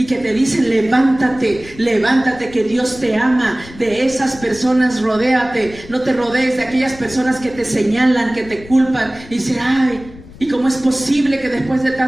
que te dicen levántate, levántate, que Dios te ama. De esas personas rodéate. No te rodees de aquellas personas que te señalan, que te culpan y dicen, ay, ¿y cómo es posible que después de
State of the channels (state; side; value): noise; left; rumble, 19 dB below the sound